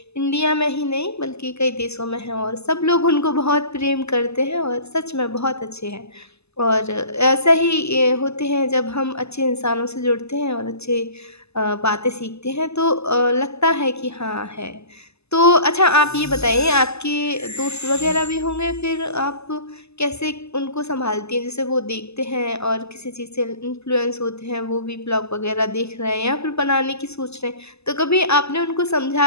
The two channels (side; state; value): right; late; 0.79 ms